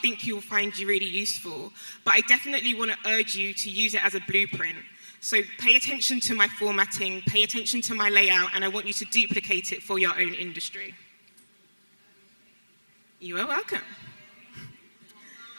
you'll find really useful. But I definitely want to urge you to use it as a blueprint. So pay attention to my formatting, pay attention to my layout, and I want you to duplicate it for your own industry. You are welcome.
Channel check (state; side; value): inverted; both; correlation -1.00